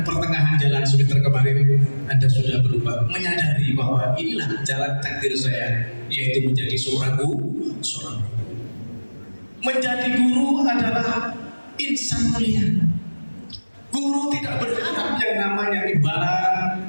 pertengahan jalan semester kemarin Anda sudah berubah, menyadari bahwa inilah jalan takdir saya, yaitu menjadi seorang guru. Menjadi guru adalah insan mulia. Guru tidak berharap yang namanya imbalan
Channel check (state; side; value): inverted; both; correlation -1.00